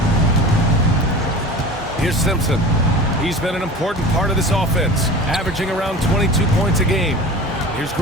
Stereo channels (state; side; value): normal; both; correlation 0.36